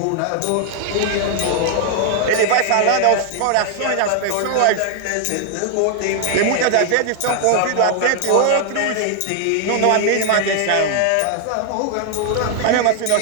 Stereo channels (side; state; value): both; different; correlation 0.00